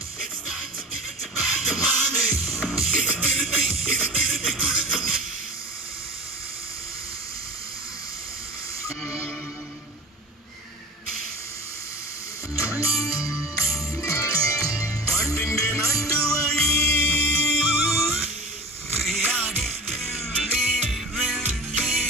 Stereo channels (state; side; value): normal; both; correlation 0.37